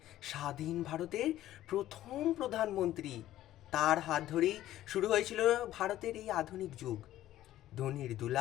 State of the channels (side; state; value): right; quieter; 13.8 dB